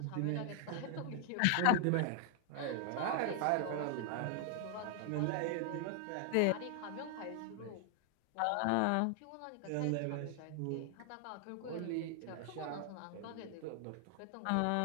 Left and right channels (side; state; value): both; different; correlation 0.00